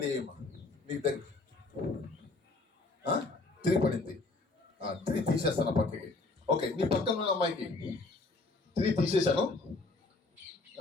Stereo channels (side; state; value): right; quieter; 3.4 dB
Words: నీకు దగ్గర 3 పడింది. 3 తీసేస్తాను పక్కకి. ఓకే, నీ పక్కన ఉన్న అమ్మాయికి 3 తీసేసాను.